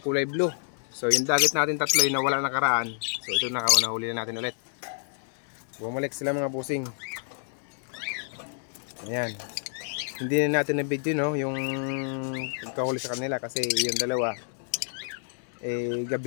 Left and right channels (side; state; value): right; silent; digital silence